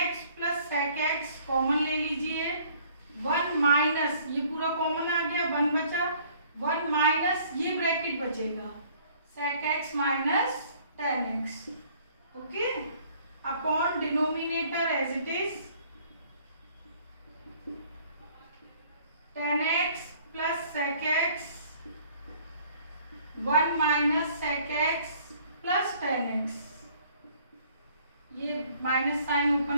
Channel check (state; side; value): inverted; both; correlation -0.58